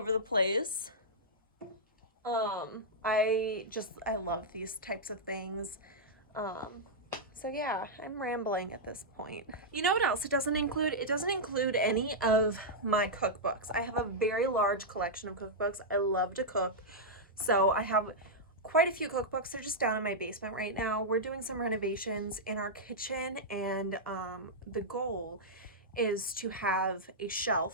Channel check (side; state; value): both; normal; correlation -0.08